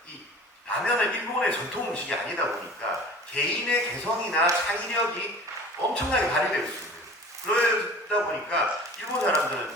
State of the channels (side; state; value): both; normal; correlation 0.42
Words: 이 라면은 일본의 전통 음식이 아니다 보니까 개인의 개성이나 창의력이 엄청나게 발휘될 수 있는, 그러다 보니까 일본 사람들은